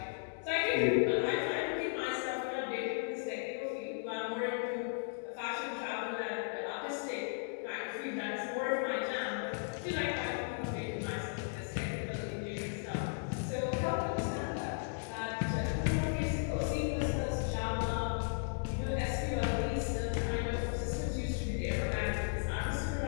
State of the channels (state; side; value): silent; right; digital silence